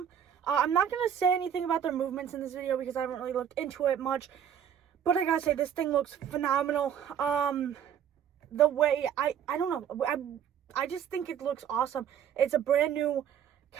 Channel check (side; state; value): left; quieter; 8.9 dB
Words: I'm not going to say anything about their movements in this video because I haven't really looked into it much. But I gotta say, this thing looks phenomenal. The way, I don't know, I just think it looks awesome. It's a brand new